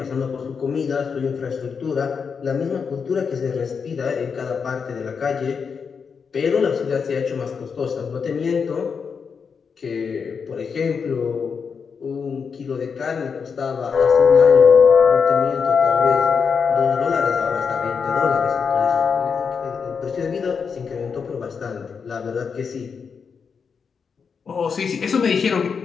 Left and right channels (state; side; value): quieter; right; 6.0 dB